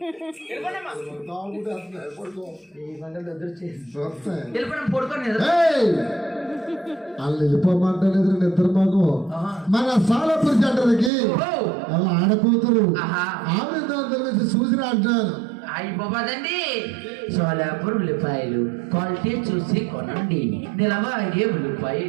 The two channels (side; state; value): left; drops out; at 11.1 s